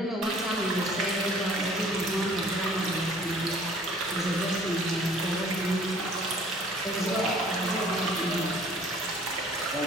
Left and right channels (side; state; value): both; normal; correlation 0.53